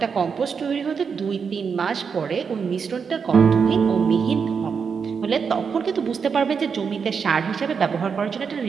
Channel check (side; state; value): left; quieter; 6.1 dB